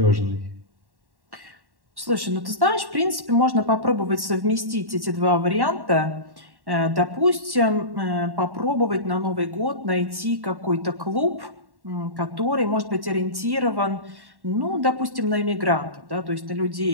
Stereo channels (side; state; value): left; late; 1.1 ms